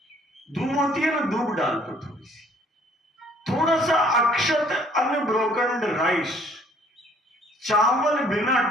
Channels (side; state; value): both; normal; correlation 0.60